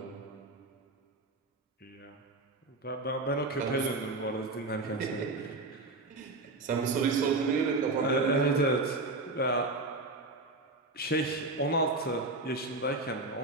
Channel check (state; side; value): quieter; left; 3.1 dB